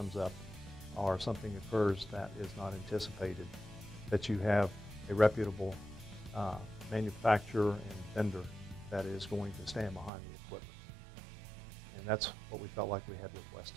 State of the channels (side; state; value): left; drops out; at 10.1 s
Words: up or something occurs that is not anticipated, that you have a reputable manufacturer and vendor that is going to stand behind the equipment. And that's what we felt like we had with